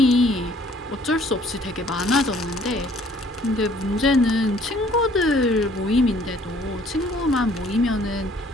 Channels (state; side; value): normal; both; correlation 0.58